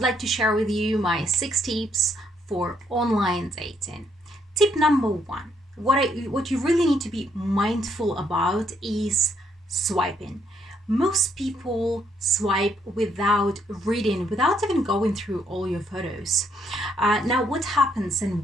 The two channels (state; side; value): normal; both; correlation 0.72